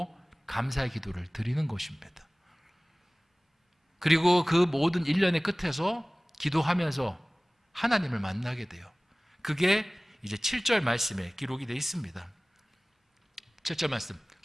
감사의 기도를 드리는 것입니다. 그리고 그 모든 일련의 끝에서 기도하면서 하나님을 만나게 돼요. 그게 이제 7절 말씀에 기록이 되어 있습니다. 7절 말씀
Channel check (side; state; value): both; normal; correlation 0.98